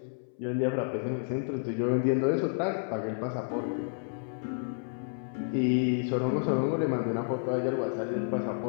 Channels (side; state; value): right; silent; 57 dB below the other